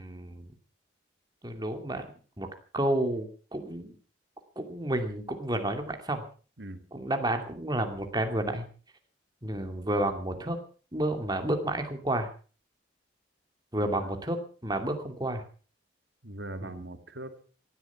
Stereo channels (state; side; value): normal; both; correlation 0.55